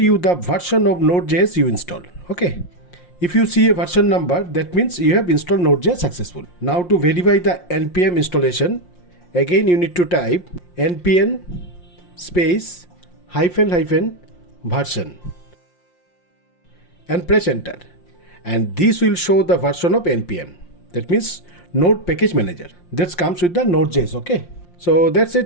the version of Node.js you install. Okay, if you see a version number, that means you have installed Node.js successful. Now to verify the npm installation, again you need to type npm space --version and press enter, and this will show the version of npm. That means Node Package Manager that comes with the Node.js. Okay, so that's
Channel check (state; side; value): late; right; 5.7 ms